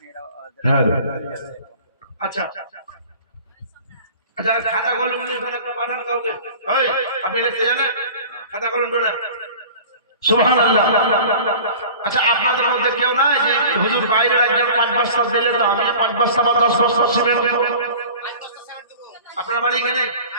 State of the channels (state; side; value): inverted; both; correlation -0.41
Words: হ্যাঁ, আচ্ছা আচ্ছা, খাতা কলম নিয়ে একটা পাঠান কাউকে। ওই, আপনি লিখতে জানেন? খাতা কলম তোলেন। সুবহানাল্লাহ। আচ্ছা, আপনাদের মধ্যে কেউ নাই যে হুজুর বাইরের একজন 5 বস্তা দিলে তো আমি 5 বস্তা বা 10 বস্তা সিমেন্ট দেব? আপনার বাড়ি এখানে